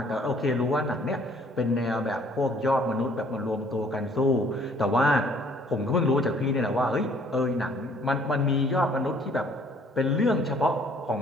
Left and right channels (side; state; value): both; normal; correlation 0.59